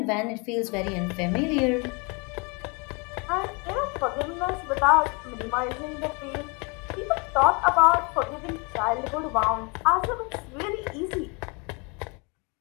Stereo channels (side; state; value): right; quieter; 31.2 dB